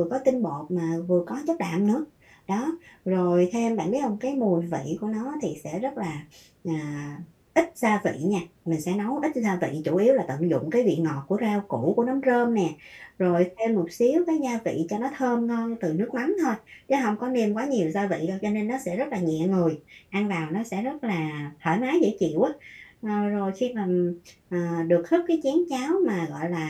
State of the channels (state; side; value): identical; both; correlation 1.00